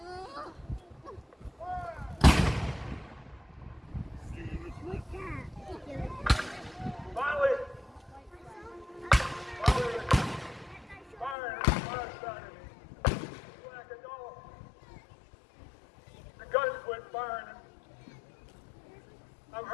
Finally, firing fire started. Slacking off. The guns quit firing. I'm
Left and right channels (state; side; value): drops out; right; at 11.4 s